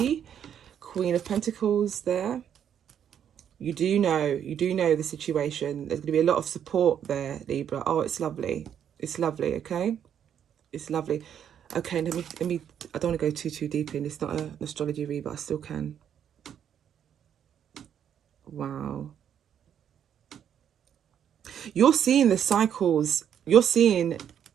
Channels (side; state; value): left; quieter; 9.0 dB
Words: Queen of Pentacles there. You do know the situation. There's going to be a lot of support there, Libra. Oh, it's lovely. It's lovely, okay? It's lovely. Okay, let me I don't want to go too deep in. It's not an astrology read, but I still can. Wow. You're seeing the cycles. You're